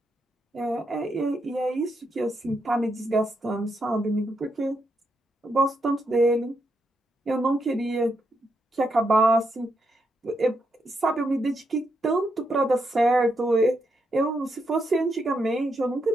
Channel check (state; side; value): normal; both; correlation 0.81